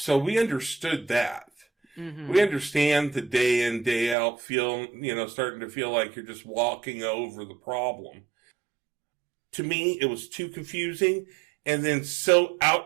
we understood that. Mm-hmm. We understand the day in, day out feel, you know, starting to feel like you're just walking over the problem. To me, it was too confusing, and then so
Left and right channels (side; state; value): left; drops out; at 4.2 s